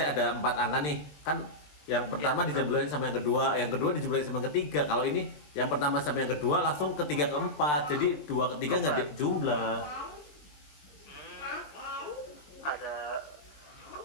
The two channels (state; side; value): late; right; 20 ms